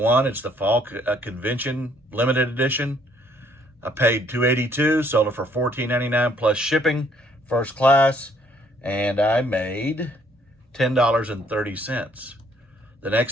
It's the Fall Convention Limited Edition. I paid $282, sold it for $14.99 plus shipping, first class, and I made $10.30. The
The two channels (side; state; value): both; normal; correlation 0.65